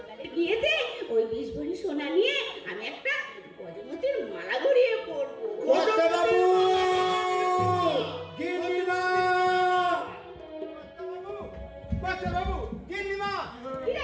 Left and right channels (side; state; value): both; identical; correlation 1.00